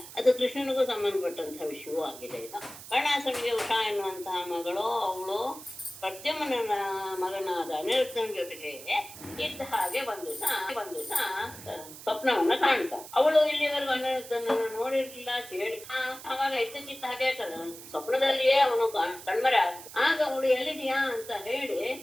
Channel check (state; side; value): noise; right; hiss, 15 dB below the sound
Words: ಅದು ಕೃಷ್ಣನಿಗೂ ಸಂಬಂಧಪಟ್ಟಂತಹ ವಿಷಯವೂ ಆಗಿದೆ. ಇದು ಬಾಣಾಸುರನಿಗೆ ಉಷಾ ಎನ್ನುವಂತಹ ಮಗಳು, ಅವಳು ಪ್ರದ್ಯುಮ್ನ ಮಗನಾದ ಅನಿರುದ್ಧನ ಜೊತೆಗೆ ಇದ್ದ ಹಾಗೆ ಒಂದು ದಿವಸ ಸ್ವಪ್ನವನ್ನ ಕಾಣ್ತ. ಅವಳು ಇಲ್ಲಿವರೆಗೂ ಅನಿರುದ್ಧನನ್ನು ನೋಡಿರ್ಲಿಲ್ಲ, ಕೇಳಿ. ಆವಾಗ ಇದ್ದಕ್ಕಿದ್ದ ಹಾಗೆ ಸ್ವಪ್ನದಲ್ಲಿಯೇ ಅವನು ಕಣ್ಮರೆ ಆಗ. ಆಗ ಅವಳು ಎಲ್ಲಿದೆಯಾ ಅಂತ ಹೇಳಿ